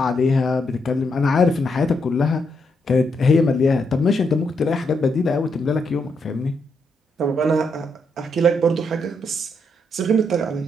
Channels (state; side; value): normal; both; correlation 0.79